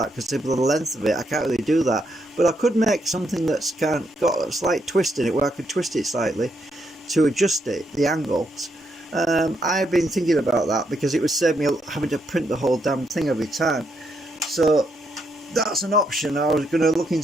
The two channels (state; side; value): normal; both; correlation 0.78